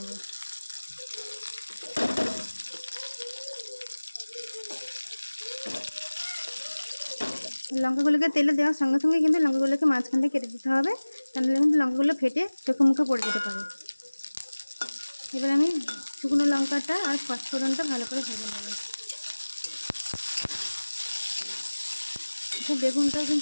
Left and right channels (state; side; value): inverted; both; correlation -1.00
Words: লঙ্কাগুলোকে তেলে দেওয়ার সঙ্গে সঙ্গে কিন্তু লঙ্কাগুলোকে মাঝখান থেকে কেটে দিতে হবে, তাহলে কিন্তু লঙ্কাগুলো ফেটে চোখে মুখে পড়ে যেতে পারে। এবার আমি শুকনো লঙ্কাটা আর পাঁচফোড়নটা ভালো করে ভেজে নেব। বেগুনটাও